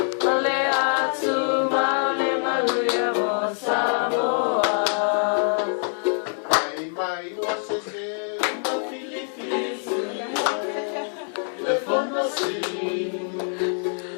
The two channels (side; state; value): right; silent; 62 dB below the other